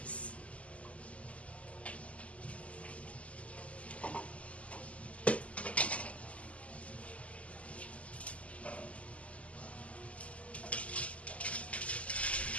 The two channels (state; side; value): late; right; 0.065 ms